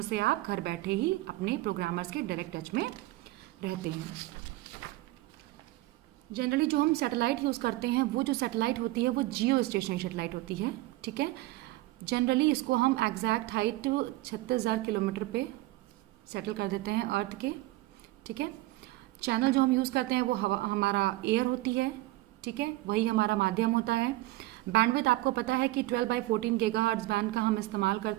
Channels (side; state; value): left; quieter; 18.4 dB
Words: से आप घर बैठे ही अपने प्रोग्रामर्स के डायरेक्ट टच में रहते हैं। जनरली जो हम सैटेलाइट यूज़ करते हैं वो जो सैटेलाइट होती है वो जियो स्टेशनरी सैटेलाइट होती है, ठीक है। जनरली इसको हम एग्जैक्ट हाइट 36,000 किलोमीटर पे सेटल कर देते हैं अर्थ के, ठीक है। चैनल जो हम यूज़ करते हैं वो हमारा एयर होती है, ठीक है, वही हमारा माध्यम होता है। बैंडविड्थ आपको पता है कि 12/14 गीगाहर्ट्ज़ बैंड का हम इस्तेमाल